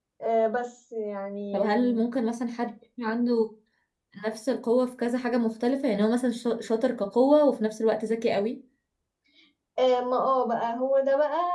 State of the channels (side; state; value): both; identical; correlation 1.00